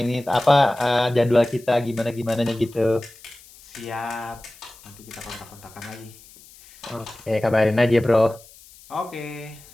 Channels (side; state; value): left; noise; hiss, 23 dB below the sound